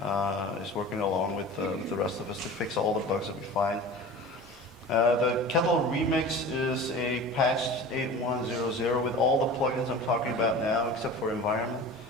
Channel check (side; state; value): both; normal; correlation 0.37